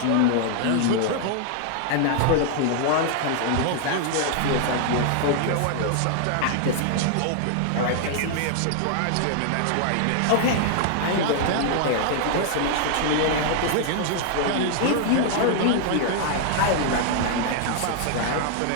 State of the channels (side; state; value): both; different; correlation 0.00